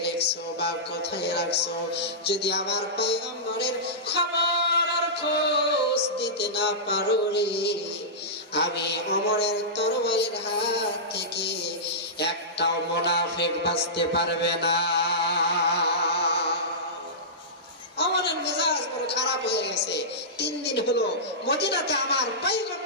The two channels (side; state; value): both; normal; correlation -0.16